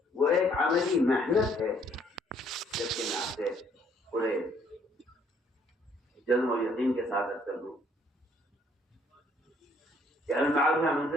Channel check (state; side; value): normal; both; correlation 0.64